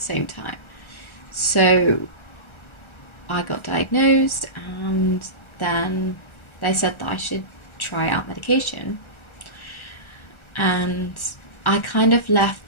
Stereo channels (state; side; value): late; right; 1.4 ms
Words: time. So I got diagnosed and then they said that I should try out medication. And I kind of left